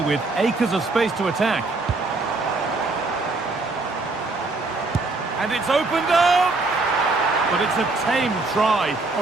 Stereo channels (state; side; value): quieter; left; 3.4 dB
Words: with acres of space to attack. And it's opened up! But it's a tame try,